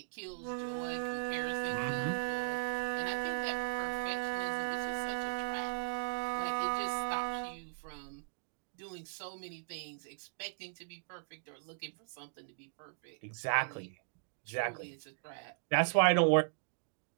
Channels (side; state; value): left; silent; digital silence